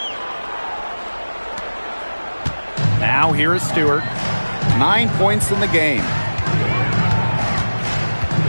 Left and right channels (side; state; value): both; inverted; correlation -1.00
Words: Now here is Stewart. 9 points in the game.